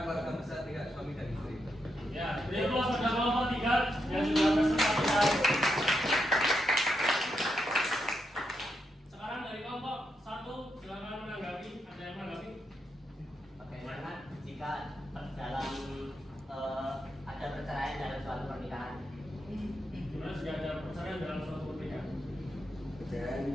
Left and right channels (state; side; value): normal; both; correlation 0.82